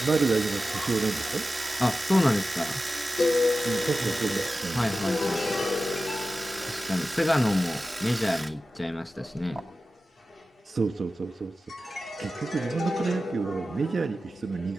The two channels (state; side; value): normal; both; correlation 0.93